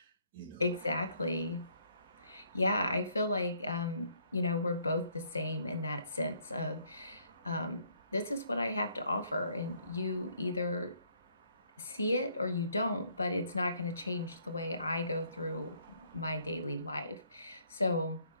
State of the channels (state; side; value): inverted; both; correlation -0.66